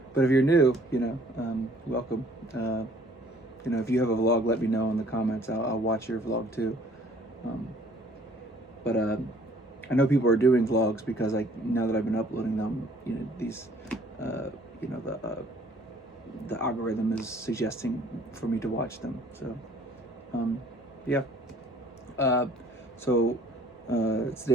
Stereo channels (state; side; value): normal; both; correlation 0.57